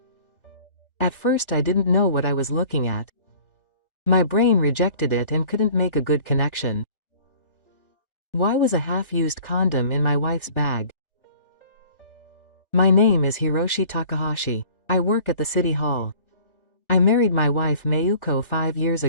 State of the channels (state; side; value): late; right; 1.3 ms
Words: At first I didn't know what I was looking at. My brain rejected it and couldn't make a good connection. Why was a half-used condom in my wife's bag? My name is Hiroshi Takahashi. I work at the city hall. I married my wife Mayuko 5 years